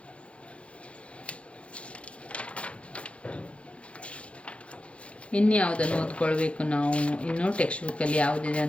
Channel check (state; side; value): late; right; 0.061 ms